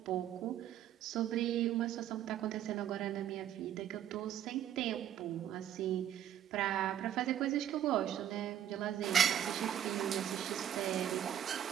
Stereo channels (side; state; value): left; quieter; 10.6 dB